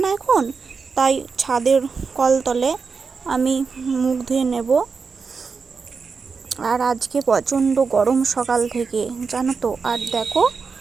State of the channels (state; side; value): quieter; left; 5.1 dB